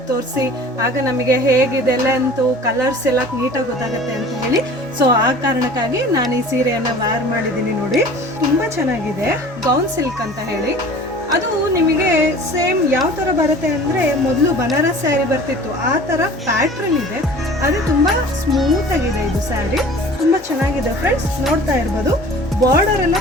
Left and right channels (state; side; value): normal; both; correlation 0.44